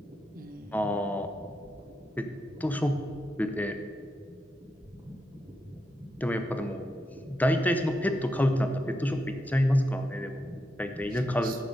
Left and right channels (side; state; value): both; normal; correlation 0.84